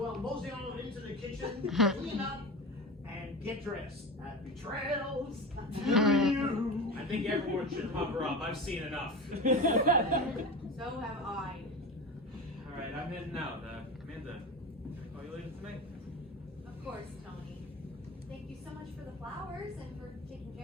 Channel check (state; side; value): normal; both; correlation 0.28